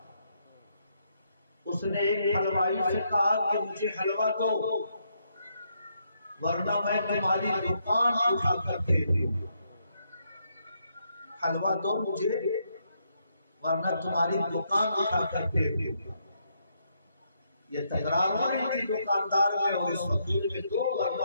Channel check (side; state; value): both; inverted; correlation -0.77